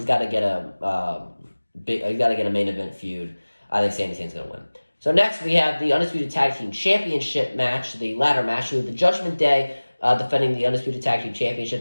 get a main event feud. I think Sami Zayn's going to win. So next we have the Undisputed Tag Team Championship match, the ladder match with the Judgment Day defending the Undisputed Tag Team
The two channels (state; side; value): inverted; both; correlation -1.00